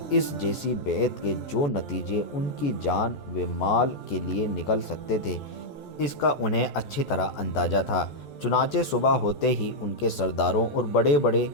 اس جیسی بیعت کے جو نتیجے ان کی جان و مال کے لیے نکل سکتے تھے، اس کا انہیں اچھی طرح اندازہ تھا۔ چنانچہ صبح ہوتے ہی ان کے سرداروں اور بڑے بڑے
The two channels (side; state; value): right; late; 14 ms